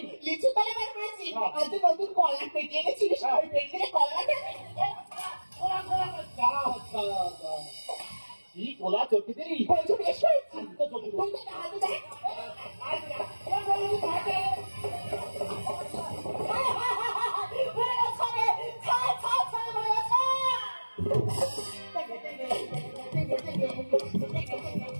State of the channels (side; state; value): both; inverted; correlation -1.00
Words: লিচু তলে বার করেছি, আর তুই নতুন কলা পেটে এনেছিলিস, ওই পেটে কলা দেবে। কি কোলা চটকে দিলি? বলছো বেশ করেছি, তো চটকে দিলি। তুমি তো হাতে দেখ। বলে গেছে, ছা, ছা, ছা, বলে গেছে।